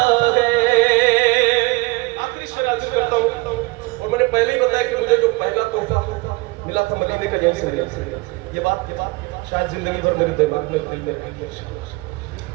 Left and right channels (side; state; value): left; quieter; 23.9 dB